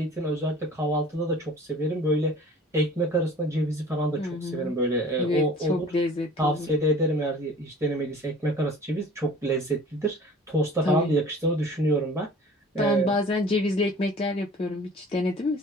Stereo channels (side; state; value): both; normal; correlation 0.46